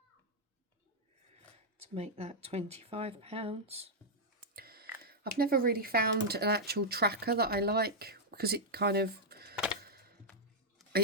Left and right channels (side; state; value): both; normal; correlation -0.05